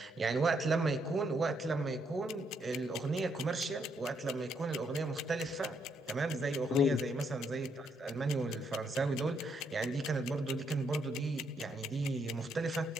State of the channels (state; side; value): normal; both; correlation 0.74